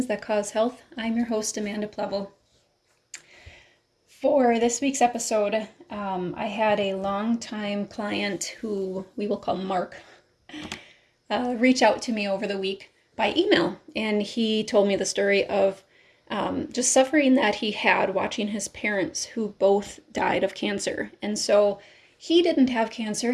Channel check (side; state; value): both; identical; correlation 1.00